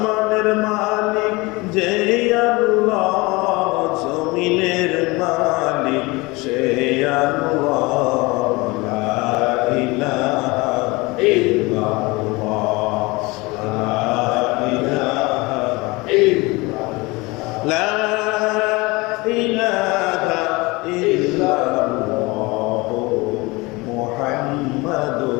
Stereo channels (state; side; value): quieter; right; 23.9 dB